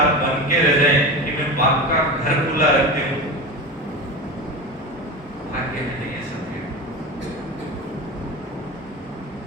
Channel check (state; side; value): normal; both; correlation 0.26